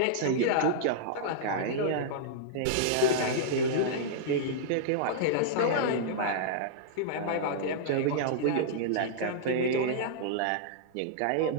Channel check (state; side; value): different; both; correlation -0.02